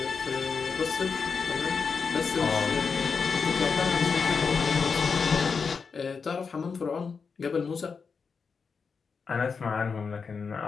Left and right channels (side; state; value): right; quieter; 5.4 dB